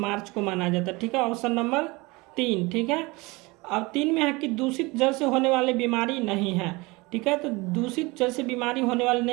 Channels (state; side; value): quieter; left; 24.2 dB